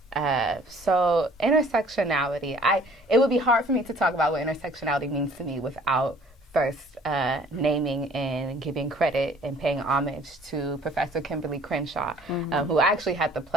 intersectionality, it would be hard for me to talk about what intersectionality means to me without first naming and giving credit and paying homage to Professor Kimberly Crenshaw, who I actually had the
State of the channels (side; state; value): both; normal; correlation 0.54